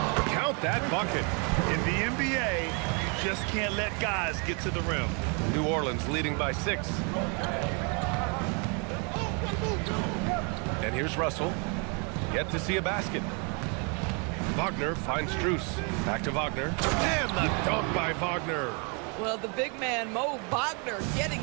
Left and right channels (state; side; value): quieter; left; 35.0 dB